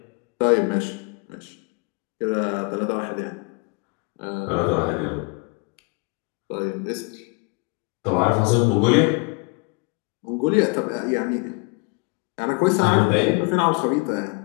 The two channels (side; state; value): right; quieter; 31.1 dB